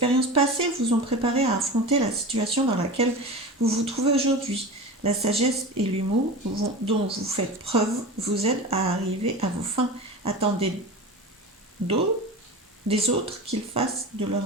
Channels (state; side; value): normal; both; correlation 0.30